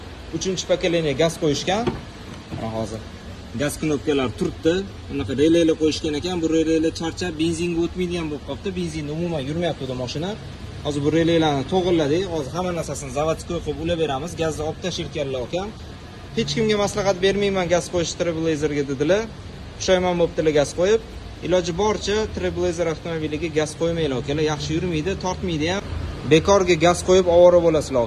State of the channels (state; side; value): identical; both; correlation 1.00